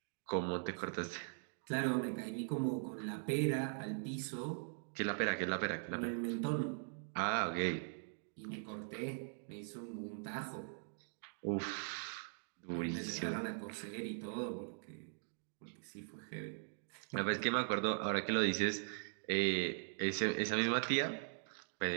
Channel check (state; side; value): silent; left; digital silence